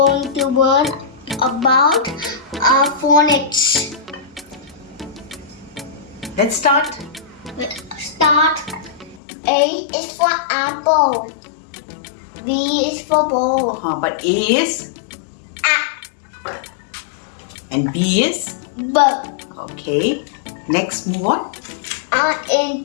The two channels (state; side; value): drops out; right; at 9.2 s